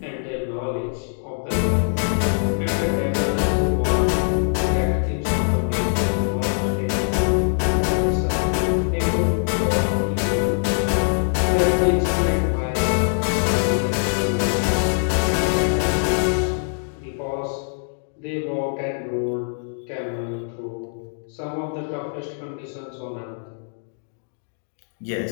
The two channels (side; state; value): right; silent; digital silence